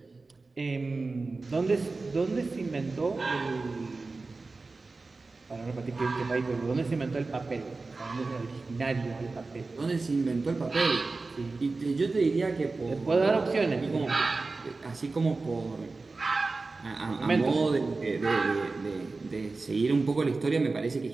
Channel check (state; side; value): quieter; left; 3.7 dB